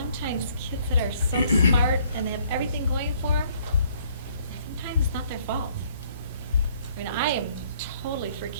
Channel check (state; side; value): inverted; both; correlation -0.63